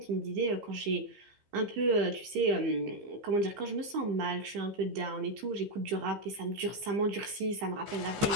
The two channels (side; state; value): left; late; 15 ms